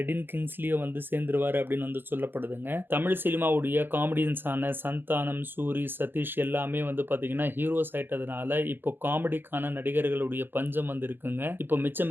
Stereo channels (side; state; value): left; late; 0.10 ms